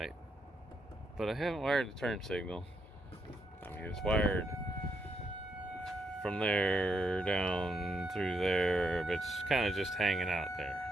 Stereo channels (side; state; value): both; normal; correlation 0.79